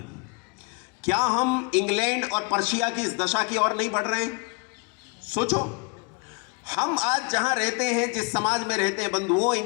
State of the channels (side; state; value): right; quieter; 33.6 dB